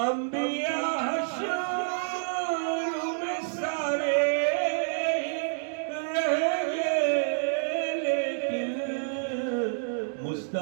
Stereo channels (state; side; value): silent; left; digital silence